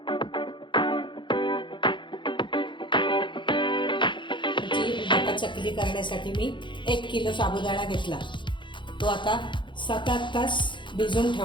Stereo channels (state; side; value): late; right; 0.23 ms